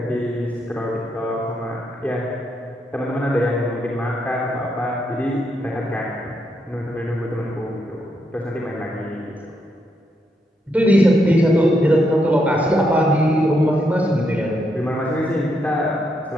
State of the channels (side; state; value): both; normal; correlation 0.79